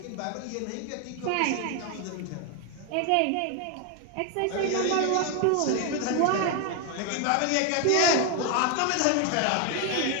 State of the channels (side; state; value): both; different; correlation 0.01